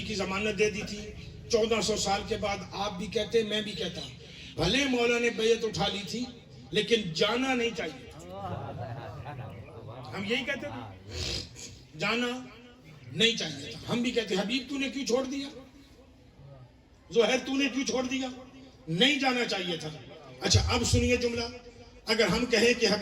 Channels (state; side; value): identical; both; correlation 1.00